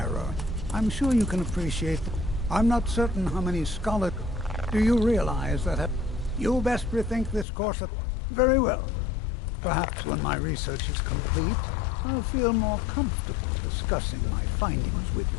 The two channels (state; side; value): drops out; right; at 7.5 s